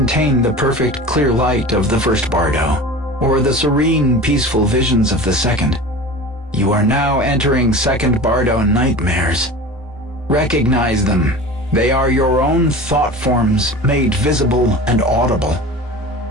the perfect clear light of the first bardo, or the serene peaceful visions of the second. You are now entering second bardo nightmares. Recognize them. They are your own thought forms made visible and audible.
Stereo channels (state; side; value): normal; both; correlation 0.36